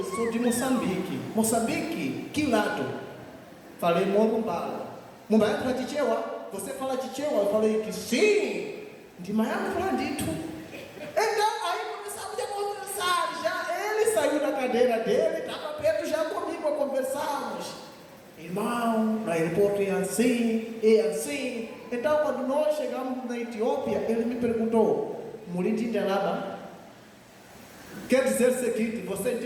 sou de Moçambique. Moçambique? Que lado? Falei, Morumbala. Mumbai para Tichewa. Você fala Tichewa? Eu falei que sim. De Miami para dito. Então, aí começamos a conversar. Já ele saiu da cadeira dele, estava perto já comigo a conversarmos. Irmão, no aeroporto é assim, é assim. Então, quando nós chegamos na Etiópia, ele me perguntou, Muriti Ndelaba, quer dizer o seguinte, você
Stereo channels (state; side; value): identical; both; correlation 1.00